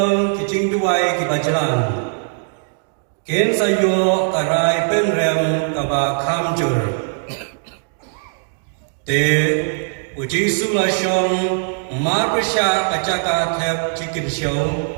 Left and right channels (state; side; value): silent; left; digital silence